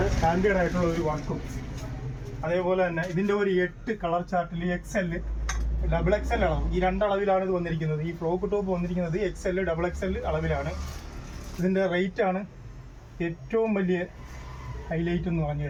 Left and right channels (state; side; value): identical; both; correlation 1.00